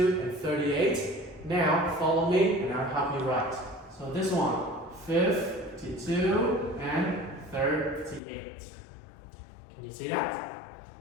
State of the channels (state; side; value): drops out; right; at 8.2 s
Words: and 38, now follow me and I'll help you write. So this one, 52 and 38. Can you see that?